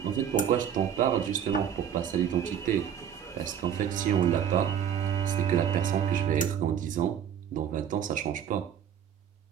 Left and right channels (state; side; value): quieter; left; 8.9 dB